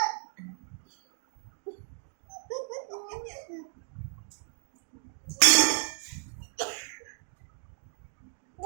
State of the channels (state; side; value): silent; left; 56 dB below the other